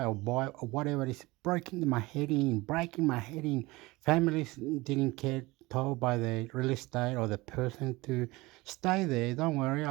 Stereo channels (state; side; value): quieter; left; 21.6 dB